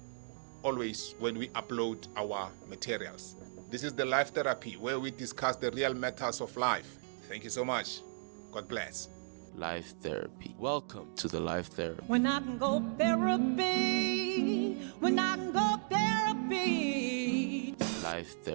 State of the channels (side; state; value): left; silent; digital silence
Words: always when we upload our materials. This is the Life Therapy, where we discuss the real matters of life. Thank you so much. God bless. Life Therapy. Welcome to the Life Therapy. When I can go therapy, when I can go therapy. Life